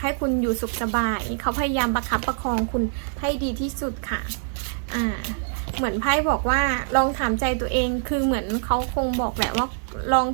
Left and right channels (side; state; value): left; silent; 62 dB below the other